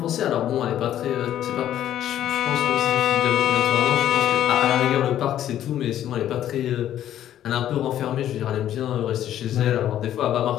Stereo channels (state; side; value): quieter; right; 11.5 dB